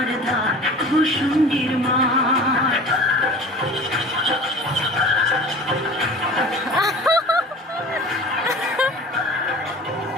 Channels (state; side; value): normal; both; correlation 0.40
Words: ধার ভূষুণ্ডির মাঠ